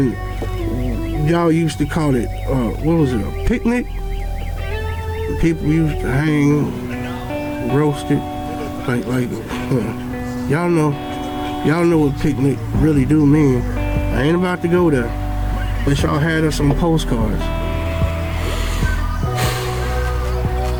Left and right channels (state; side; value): identical; both; correlation 1.00